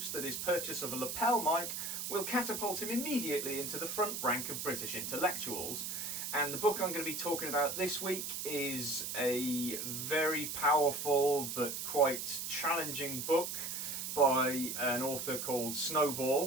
that his purchase of a lapel mic will catapult him immediately into the front rank of British intellectuals. And the book I'm going to be talking about this week is a very powerful but quite challenging book by an author called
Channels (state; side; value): noise; right; hiss, 4 dB below the sound